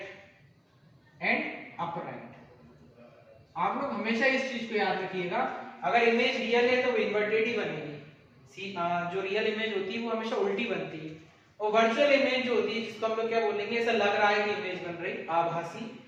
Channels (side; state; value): both; identical; correlation 1.00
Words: एंड अपराइट। आप लोग हमेशा इस चीज को याद रखिएगा, अगर इमेज रियल है तो वो इन्वर्टेड ही बनेगी। जो रियल इमेज होती है वो हमेशा उल्टी बनती है। और वर्चुअल इमेज जो होती है, जिसको हम लोग क्या बोलेंगे, ऐसा लग रहा है कि इमेज बन रही, आभासी,